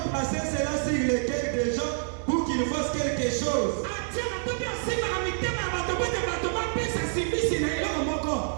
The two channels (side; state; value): left; silent; digital silence